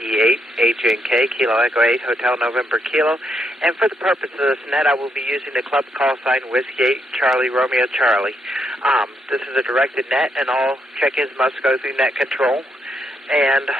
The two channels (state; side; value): normal; both; correlation 0.78